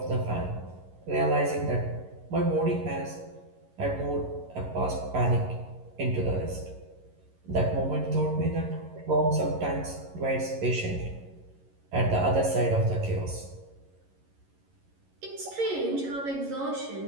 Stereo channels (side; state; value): left; late; 11 ms